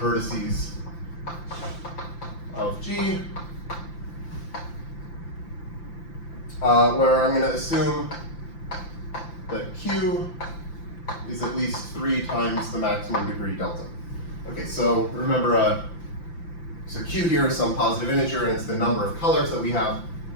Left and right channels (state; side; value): late; right; 5.8 ms